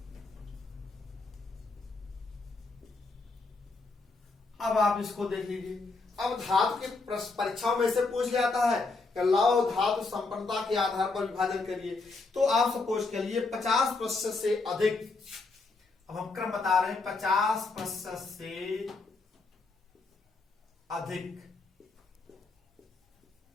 अब आप इसको देख लीजिए। अब धातु के परीक्षाओं में से पूछ जाता है कि लौह धातु संपन्नता के आधार पर विभाजन करिए। तो आप सपोज के लिए 50% से अधिक, अब हम क्रम बता रहे हैं, 50% से अधिक,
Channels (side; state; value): right; quieter; 3.8 dB